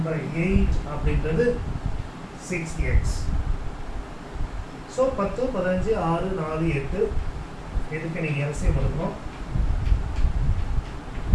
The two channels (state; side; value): identical; both; correlation 1.00